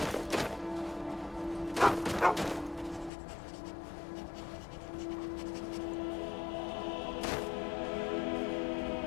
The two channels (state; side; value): drops out; right; at 3.1 s